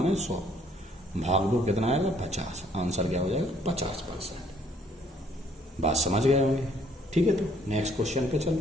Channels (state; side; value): normal; both; correlation 0.63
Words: 100, भाग दो कितना आएगा 50। आंसर क्या हो जाएगा 50%। बात समझ गए होंगे, ठीक है। तो नेक्स्ट क्वेश्चन पे